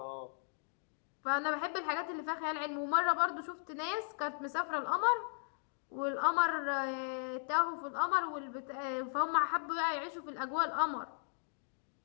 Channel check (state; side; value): silent; right; digital silence